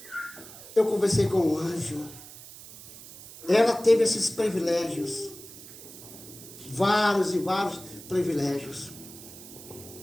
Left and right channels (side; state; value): right; noise; hiss, 16 dB below the sound